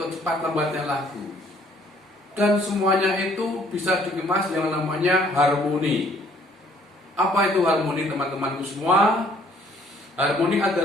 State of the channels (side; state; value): both; normal; correlation 0.61